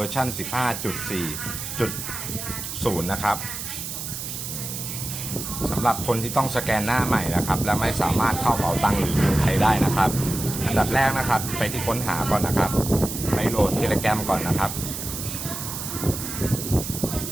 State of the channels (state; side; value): noise; right; hiss, 6 dB below the sound